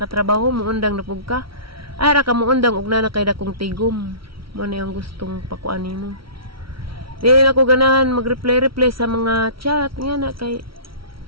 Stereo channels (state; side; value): late; left; 0.75 ms